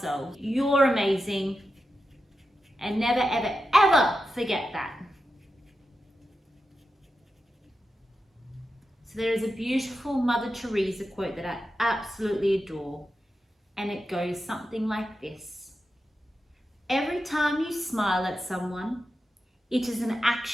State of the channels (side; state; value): both; normal; correlation 0.90